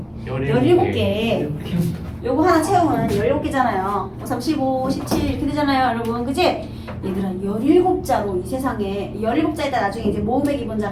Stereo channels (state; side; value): identical; both; correlation 1.00